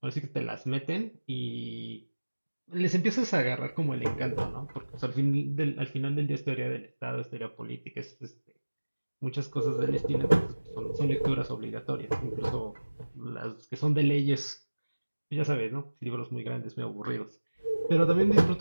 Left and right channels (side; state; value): both; inverted; correlation -1.00